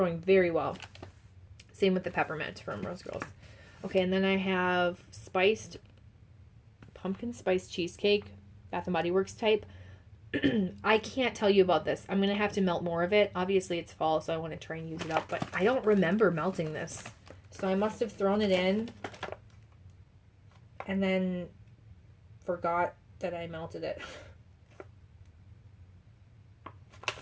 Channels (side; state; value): both; identical; correlation 1.00